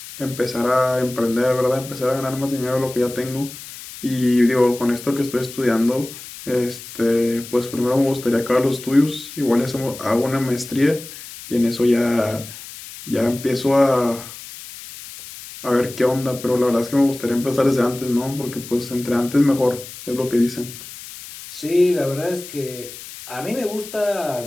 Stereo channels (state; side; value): noise; left; hiss, 14 dB below the sound